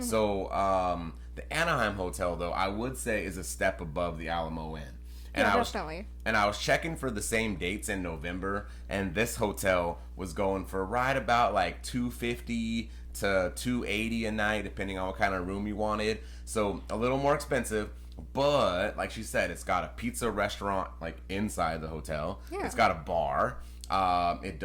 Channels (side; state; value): both; identical; correlation 1.00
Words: the Anaheim Hotel, though, I would say is a step above the Alamo Inn. And definitely. I was checking for the same dates in November, and this hotel was going for right about like $250 to $280 a night, depending on what kind of room you wanted. So a little more expensive. But like she said, it's got a pizza restaurant like inside the hotel. Yeah. It's got a bar. It